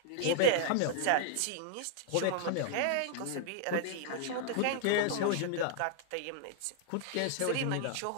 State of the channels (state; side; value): different; both; correlation -0.01